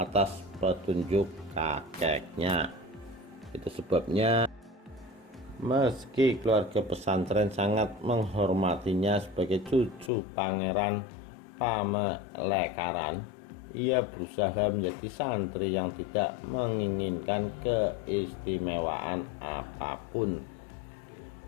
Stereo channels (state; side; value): drops out; right; at 10.1 s